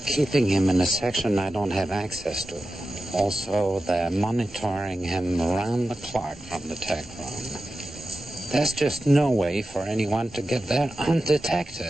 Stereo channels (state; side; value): normal; both; correlation 0.93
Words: him in a section I don't have access to. Also, they're monitoring him around the clock from the tech room. There's just no way for anyone to get there